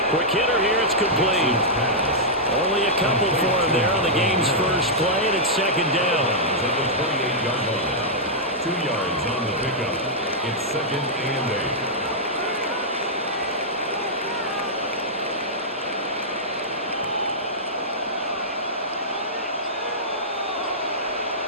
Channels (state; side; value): normal; both; correlation -0.09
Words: Quick hitter here, it's complete. Only a couple for him there on the game's first play, and it's second down. At the 28-yard line. 2 yards on the pickup. It's second and